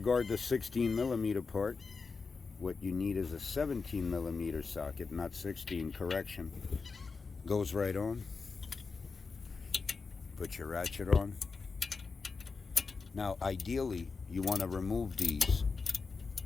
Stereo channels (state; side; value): quieter; right; 4.7 dB